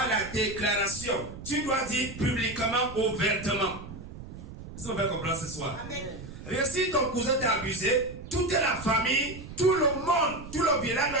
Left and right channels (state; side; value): noise; right; rumble, 13 dB below the sound